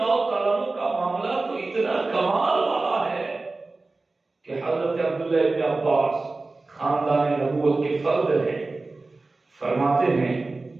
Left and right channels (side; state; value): left; quieter; 3.4 dB